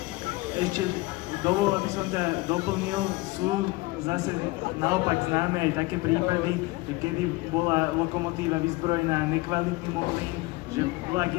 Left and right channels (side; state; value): right; quieter; 21.7 dB